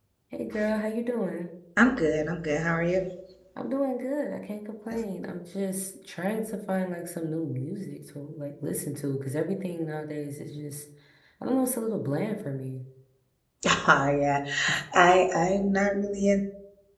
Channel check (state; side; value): identical; both; correlation 1.00